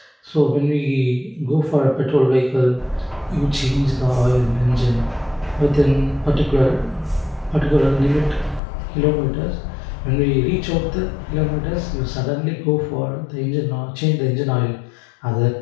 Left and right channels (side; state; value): right; drops out; at 8.6 s